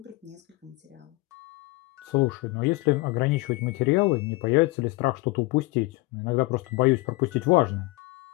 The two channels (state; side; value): quieter; right; 22.7 dB